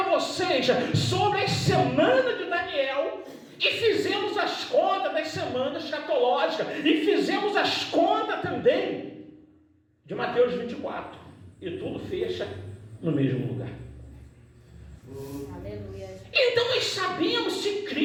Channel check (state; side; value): identical; both; correlation 1.00